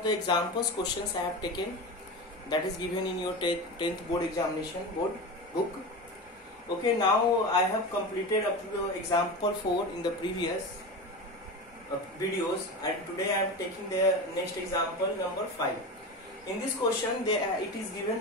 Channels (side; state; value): both; normal; correlation 0.25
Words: the examples questions I have taken that is given in your 10th board examination board book. Okay, now I have completed up to the example 4 in the previous videos, and today I am taking the next example number 5. In this question it is